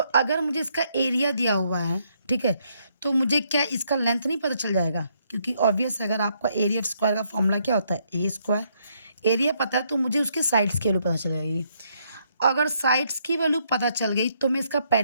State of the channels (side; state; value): both; inverted; correlation -0.73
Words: मुझे इसका एरिया दिया हुआ है, ठीक है, तो मुझे क्या इसका लेंथ नहीं पता चल जाएगा? क्योंकि ऑब्वियस अगर आपका एरिया ऑफ स्क्वायर का फॉर्मूला क्या होता है? ए स्क्वायर। एरिया पता है तो मुझे उसके साइड्स की वैल्यू पता चल जाएगी। अगर साइड्स की वैल्यू पता चल गई तो मैं इसका